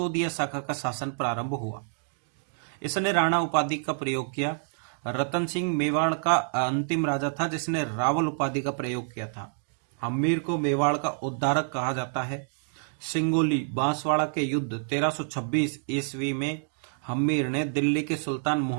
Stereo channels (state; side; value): silent; left; digital silence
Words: शाखा का शासन प्रारंभ हुआ। इसने राणा उपाधि का प्रयोग किया। रतन सिंह मेवाड़ का अंतिम राजा था जिसने रावल उपाधि का प्रयोग किया था। हम्मीर को मेवाड़ का उद्धारक कहा जाता है। सिंगोली बांसवाड़ा के युद्ध 1326 ईस्वी में हम्मीर ने दिल्ली के सुल्तान